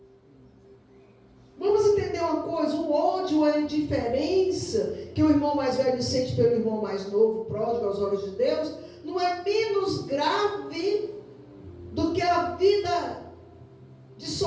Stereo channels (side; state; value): both; identical; correlation 1.00